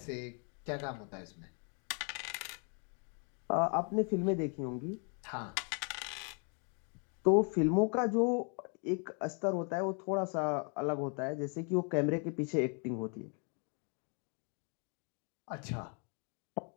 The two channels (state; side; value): quieter; right; 39.4 dB